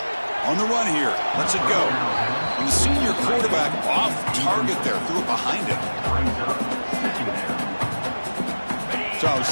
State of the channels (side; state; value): both; inverted; correlation -1.00